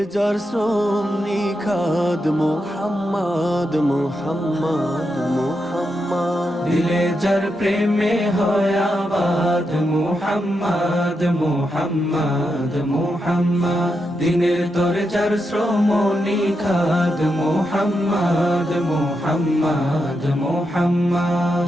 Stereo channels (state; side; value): normal; both; correlation 0.85